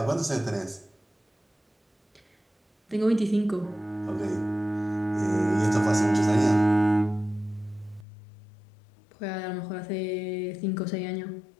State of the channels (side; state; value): right; drops out; at 8.1 s